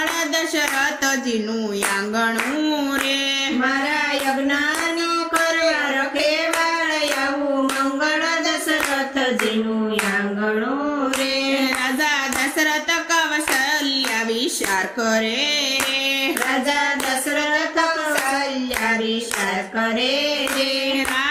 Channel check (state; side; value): identical; both; correlation 1.00